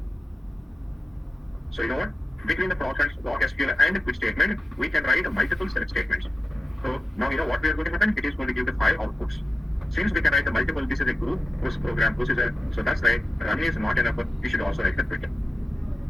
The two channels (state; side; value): normal; both; correlation 0.92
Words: So you know what? Between the ProcSQL and quit statement, we can write multiple select statements. So now you know what we are going to happen. It is going to give the 5 outputs. Since we can write the multiple, this is a group, this program, this is a, so that's why run is not enough. We should also write the quit.